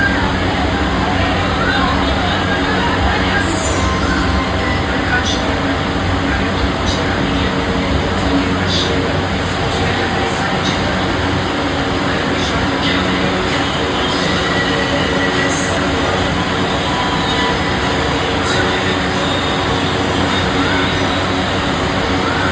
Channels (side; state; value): both; identical; correlation 1.00